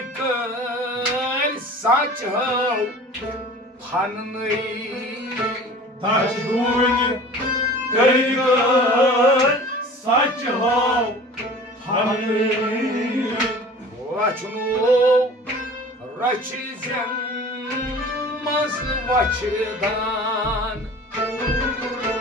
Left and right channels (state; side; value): normal; both; correlation 0.42